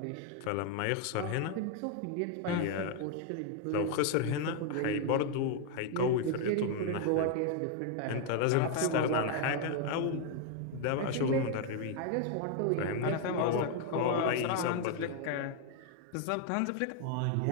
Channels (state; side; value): different; both; correlation 0.00